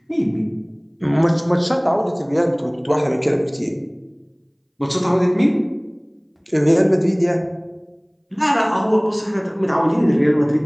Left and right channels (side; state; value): both; identical; correlation 1.00